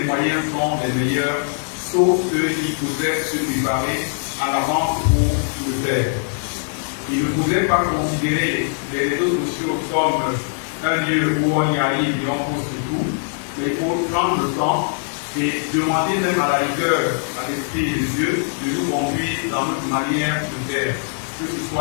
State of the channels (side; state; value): right; silent; digital silence